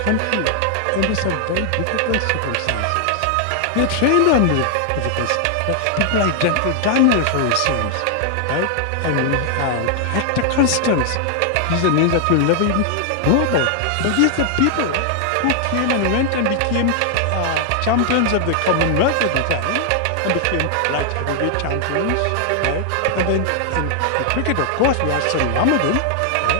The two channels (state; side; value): different; both; correlation 0.00